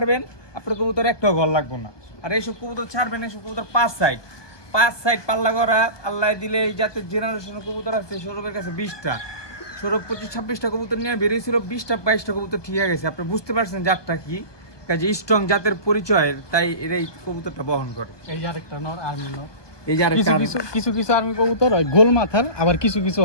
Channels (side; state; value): right; late; 1.2 ms